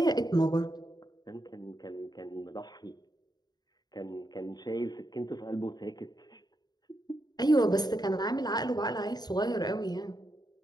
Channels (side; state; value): right; late; 0.20 ms